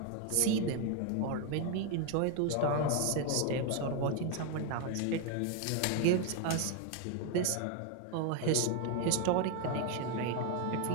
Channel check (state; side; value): different; both; correlation 0.01